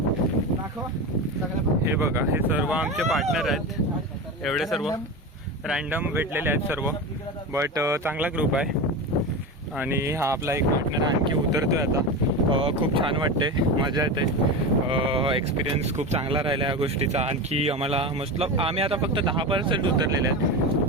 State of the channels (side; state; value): both; normal; correlation 0.23